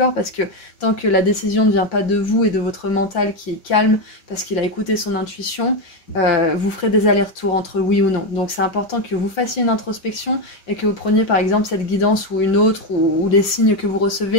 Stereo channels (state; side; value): late; right; 5.2 ms